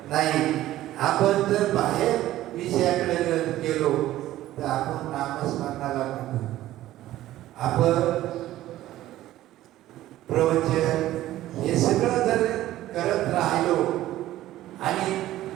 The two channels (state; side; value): quieter; left; 14.6 dB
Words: नाही. आपण जर बाहेर विषयाकडे गेलो तर आपण नामस्मरणाला म्हणतो. आपण प्रवचन हे सगळं जर करत राहिलो आणि